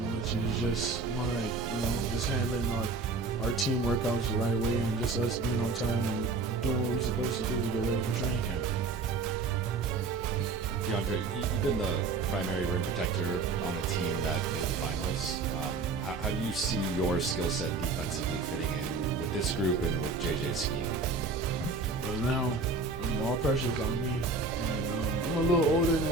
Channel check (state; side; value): quieter; left; 3.9 dB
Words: much. It was just more like, just handling our team workouts the right way and just us being on time and doing what we're supposed to do to get ready for training camp. Deandre, you've been the primary rim protector on a team that made the finals. How do you see your skill set defensively fitting in with this group and with JJ's scheme? Well, now all pressure is on me, and I'm a little older